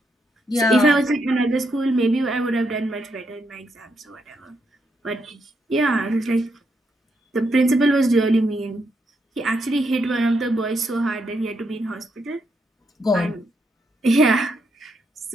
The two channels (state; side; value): normal; both; correlation 0.79